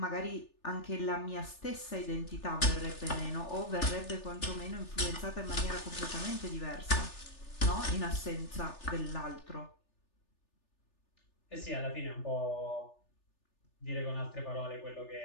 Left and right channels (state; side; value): late; right; 3.4 ms